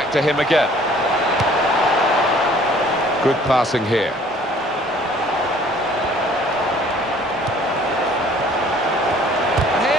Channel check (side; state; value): both; normal; correlation 0.55